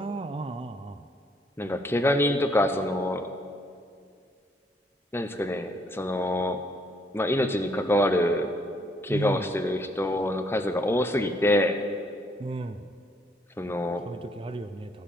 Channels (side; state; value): both; normal; correlation 0.68